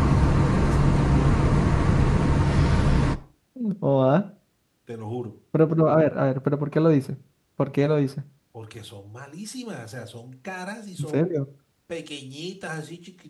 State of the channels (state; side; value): identical; both; correlation 1.00